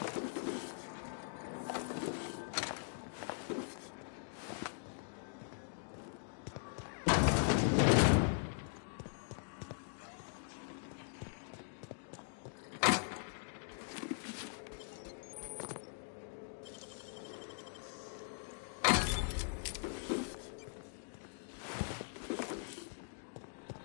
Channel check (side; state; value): right; silent; digital silence